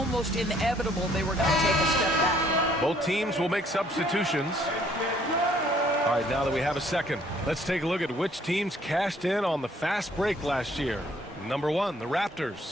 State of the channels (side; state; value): both; normal; correlation 0.63